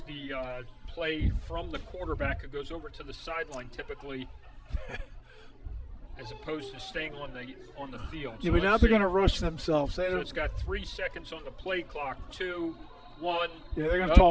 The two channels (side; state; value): both; identical; correlation 1.00